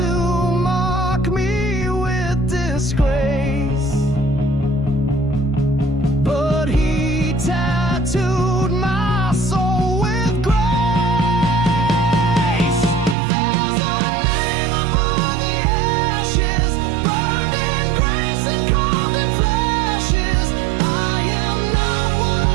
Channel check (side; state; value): left; drops out; at 13.2 s